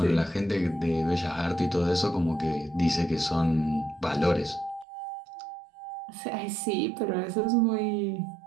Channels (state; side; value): drops out; left; at 4.9 s